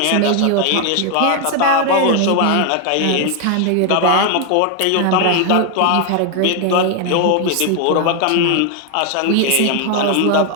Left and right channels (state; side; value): different; both; correlation 0.01